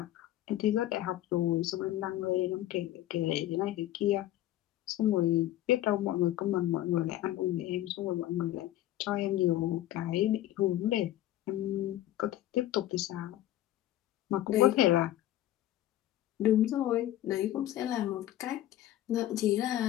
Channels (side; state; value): right; quieter; 13.9 dB